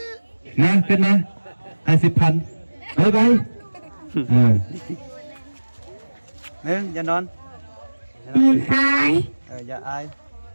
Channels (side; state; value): both; inverted; correlation -1.00